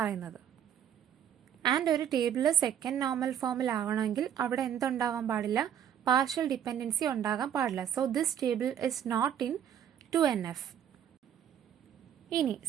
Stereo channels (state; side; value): quieter; left; 9.4 dB